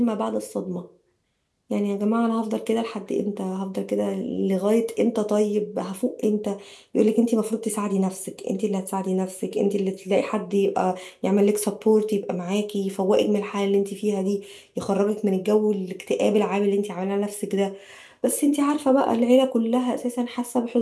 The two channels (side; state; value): both; identical; correlation 1.00